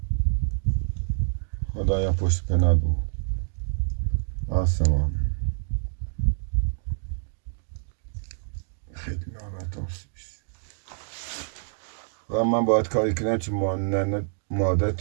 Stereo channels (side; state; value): left; silent; digital silence